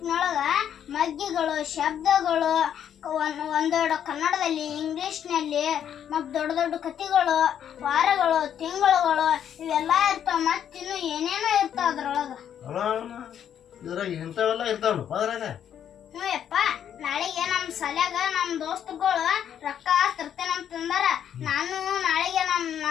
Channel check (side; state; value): right; quieter; 9.4 dB